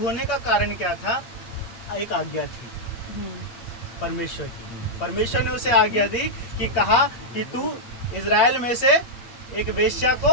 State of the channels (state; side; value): late; right; 8.6 ms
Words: का कारण क्या था? एक आज्ञा थी परमेश्वर की। परमेश्वर ने उसे आज्ञा दी कि कहा कि तू इज़राइल में से एक वेश्या